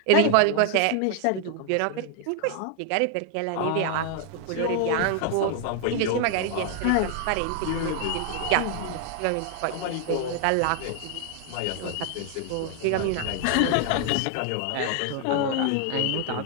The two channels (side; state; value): both; different; correlation 0.00